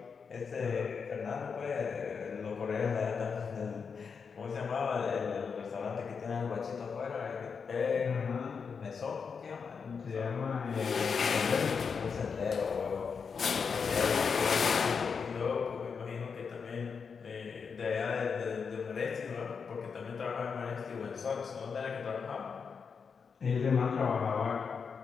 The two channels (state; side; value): quieter; right; 5.8 dB